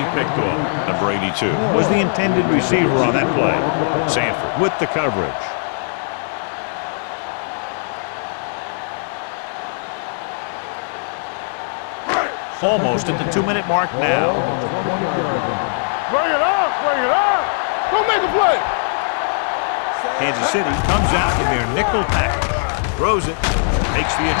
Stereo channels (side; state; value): right; silent; 66 dB below the other